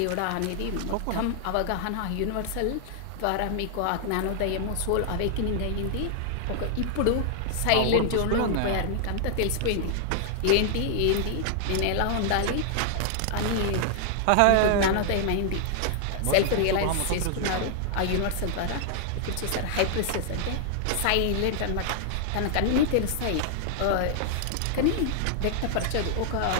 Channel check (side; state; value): both; different; correlation -0.01